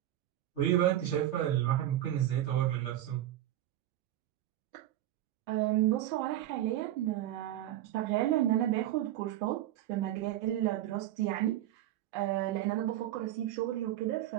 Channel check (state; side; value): quieter; left; 13.1 dB